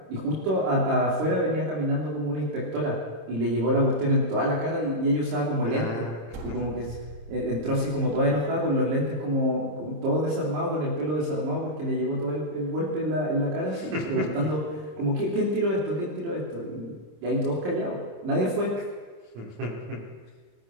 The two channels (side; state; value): left; late; 26 ms